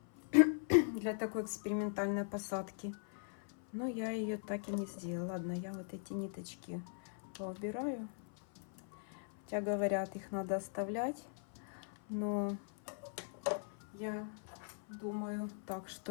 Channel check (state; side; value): silent; right; 51 dB below the other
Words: для такой экспериментальной посадки. Но я ее так и не сделала. Ладно, я вот эти ниточки поубираю. Хотя говорят, их надо оставлять. Но Я думаю так,